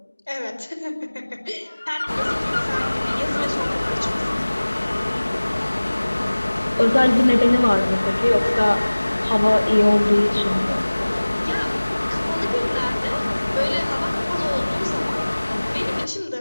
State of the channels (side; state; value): both; inverted; correlation -1.00